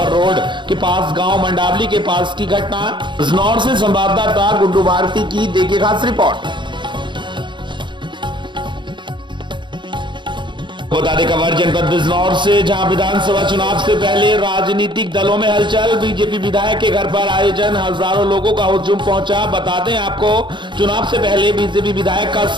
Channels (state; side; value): late; left; 0.23 ms